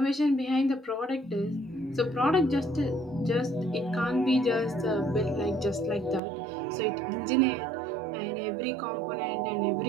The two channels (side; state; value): left; drops out; at 6.2 s